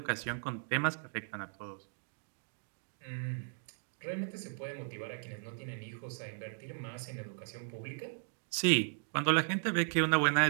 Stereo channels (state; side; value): silent; left; digital silence